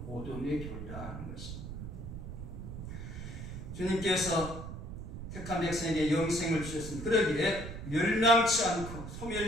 보존의 교리라 하는 것입니다. 주님께서 택한 백성에게 영생을 주셨습니다. 그러기에 멸망치 않고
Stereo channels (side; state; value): right; noise; rumble, 8 dB below the sound